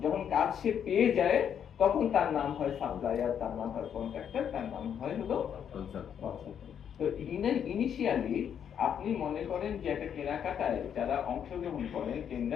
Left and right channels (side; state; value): right; quieter; 8.5 dB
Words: যখন কাজ সে পেয়ে যায় তখন তার নাম হয় সাপ্লায়ার, তার নাম হয় কন্ট্রাক্টর, তার নাম হয় হলো কনসালটেন্ট। তো ইনিশিয়ালি আপনি মনে করেন যে একটা কেনাকাটায় যারা অংশগ্রহণ করেন